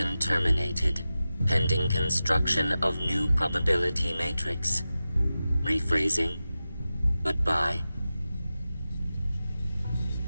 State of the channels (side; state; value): both; inverted; correlation -0.94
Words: terminated. Pending construction of new probability matrix. Rephrasing. Goodbye.